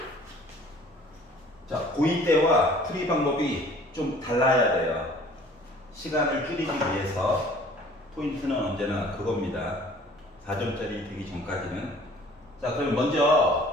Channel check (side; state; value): both; normal; correlation 0.51